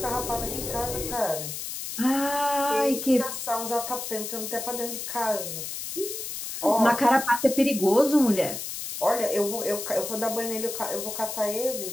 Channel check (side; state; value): left; noise; hiss, 6 dB below the sound